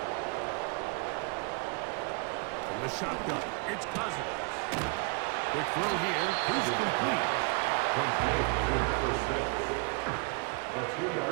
From the shotgun, it's Cousins. Quick throw here is complete. Complete to number 6. A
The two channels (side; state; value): left; quieter; 34.8 dB